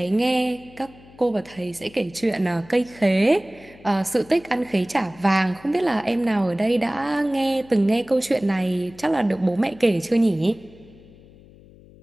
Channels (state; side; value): noise; left; hum, 23 dB below the sound